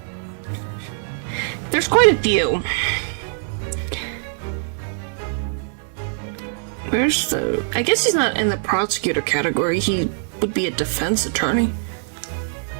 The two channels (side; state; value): left; silent; 61 dB below the other